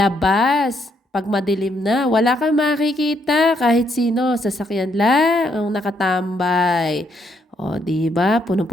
Pag madilim na, wala kang makikita kahit sino. Sasakyan lang ang nakatambay. O, di ba?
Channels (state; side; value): normal; both; correlation 0.74